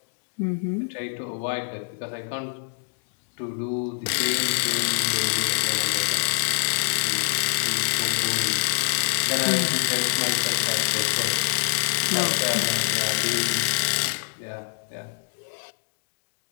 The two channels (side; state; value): right; silent; digital silence